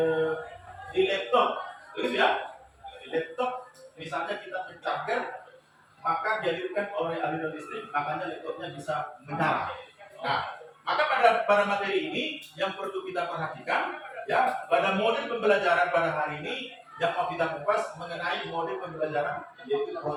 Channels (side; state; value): both; identical; correlation 1.00